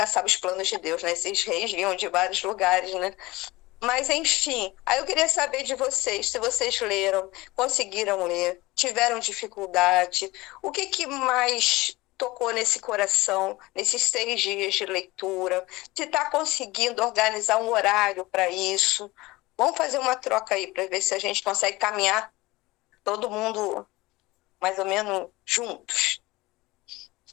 sabe os planos de Deus, né? Esses reis vinham de vários lugares, né? Mas, enfim, aí eu queria saber de vocês, se vocês leram, conseguiram ler, tiveram dificuldade, o que mais tocou nesse coração, nesses 6 dias de leitura, se está conseguindo organizar um horário para isso. Vamos fazer uma troca aí para ver se a gente consegue caminhar todo mundo mais ou menos juntos.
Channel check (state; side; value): quieter; right; 20.5 dB